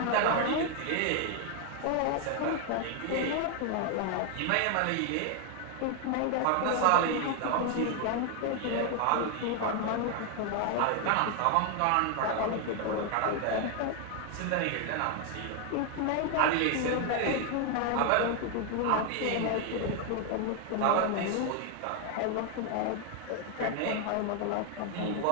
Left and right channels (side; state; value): both; different; correlation 0.01